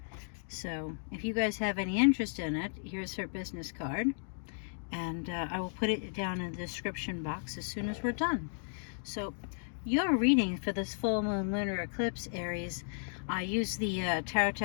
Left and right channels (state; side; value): silent; right; digital silence